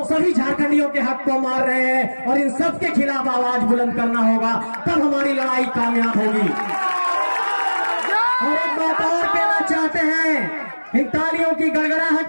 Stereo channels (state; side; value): inverted; both; correlation -1.00